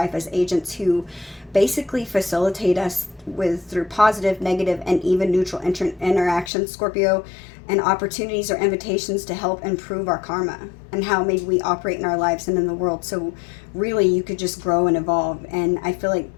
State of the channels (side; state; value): right; drops out; at 6.5 s